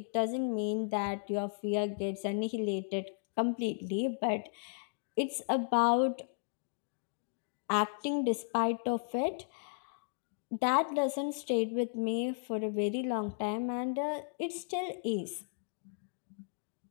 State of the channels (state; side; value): silent; right; digital silence